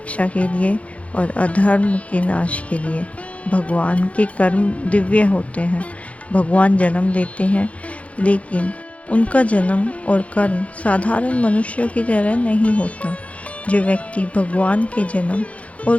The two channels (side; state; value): right; late; 0.065 ms